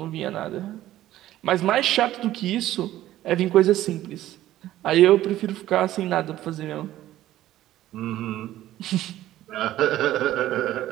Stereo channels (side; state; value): left; quieter; 14.0 dB